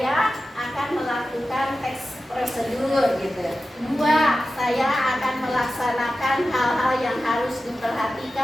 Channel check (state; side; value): normal; both; correlation 0.94